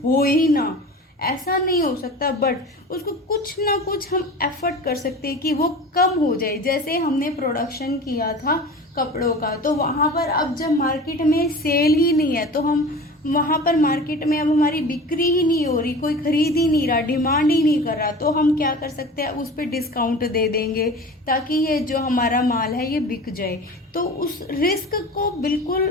हो ही ना, ऐसा नहीं हो सकता, बट उसको कुछ ना कुछ हम एफर्ट कर सकते हैं कि वो कम हो जाए। जैसे हमने प्रोडक्शन किया था कपड़ों का, तो वहाँ पर अब जब मार्केट में सेल ही नहीं है तो हम वहाँ पर मार्केट में अब हमारी बिक्री ही नहीं हो रही, कोई खरीद ही नहीं रहा, डिमांड ही नहीं कर रहा, तो हम क्या कर सकते हैं, उस पर डिस्काउंट दे देंगे ताकि ये जो हमारा माल है ये बिक जाए। तो उस रिस्क को बिल्कुल,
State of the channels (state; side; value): normal; both; correlation 0.36